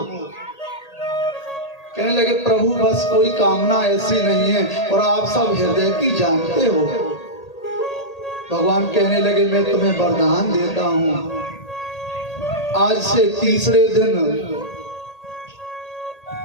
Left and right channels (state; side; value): late; right; 1.8 ms